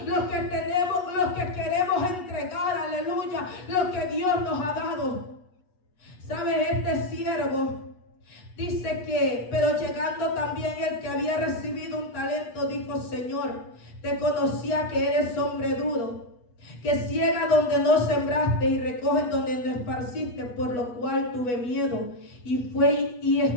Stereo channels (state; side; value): late; right; 8.2 ms